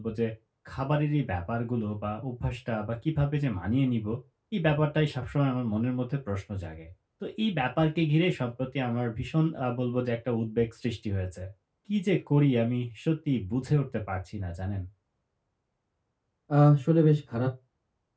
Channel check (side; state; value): both; identical; correlation 1.00